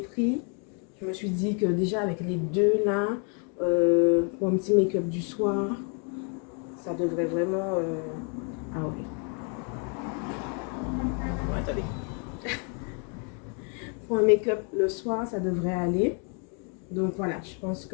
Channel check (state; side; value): quieter; right; 39.3 dB